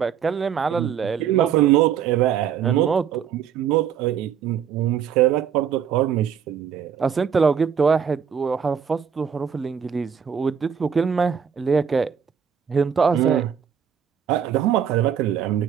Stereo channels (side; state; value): left; quieter; 7.9 dB